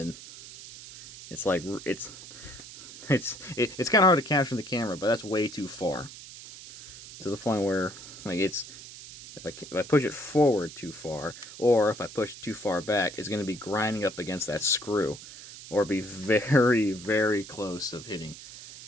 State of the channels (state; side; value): noise; right; hiss, 15 dB below the sound